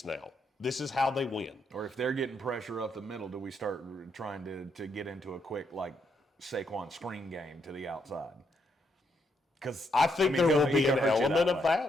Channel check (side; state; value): both; normal; correlation 0.77